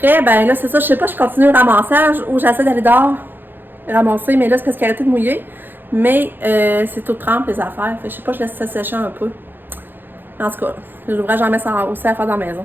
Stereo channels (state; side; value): late; left; 0.095 ms